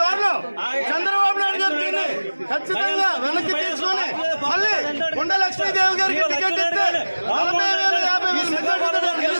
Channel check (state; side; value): inverted; both; correlation -1.00